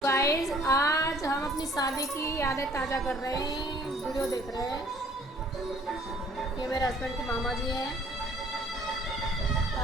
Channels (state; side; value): normal; both; correlation 0.57